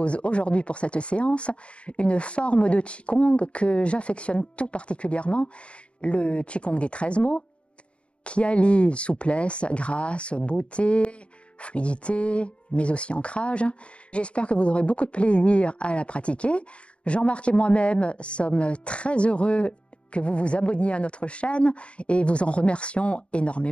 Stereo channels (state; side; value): late; right; 0.059 ms